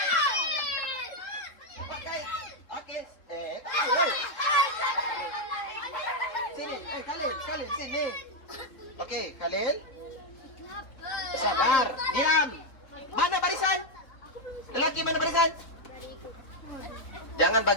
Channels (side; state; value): right; late; 3.8 ms